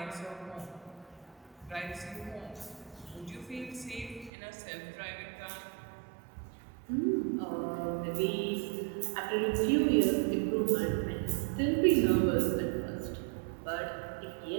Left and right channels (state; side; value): drops out; left; at 4.3 s